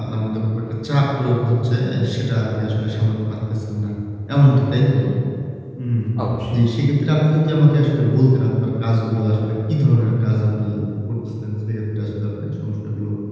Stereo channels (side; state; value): both; identical; correlation 1.00